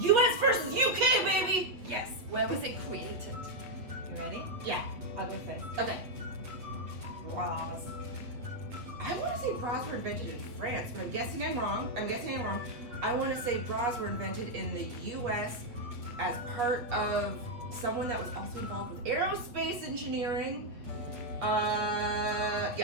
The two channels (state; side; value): late; left; 8.4 ms